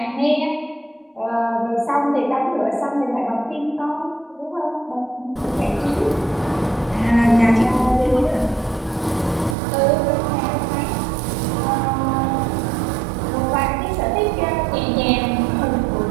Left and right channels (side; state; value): left; drops out; at 9.6 s